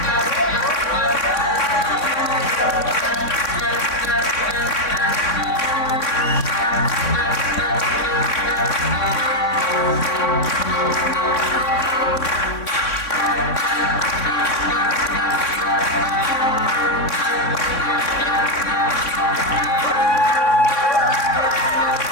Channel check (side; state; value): right; late; 3.6 ms